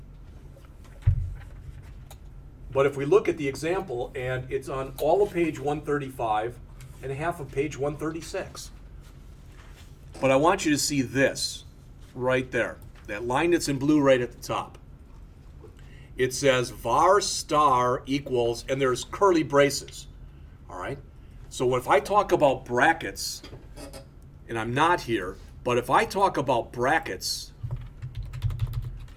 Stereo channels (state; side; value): identical; both; correlation 1.00